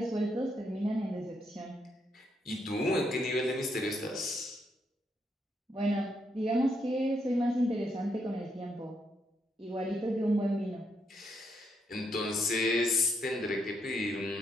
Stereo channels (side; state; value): both; normal; correlation 0.77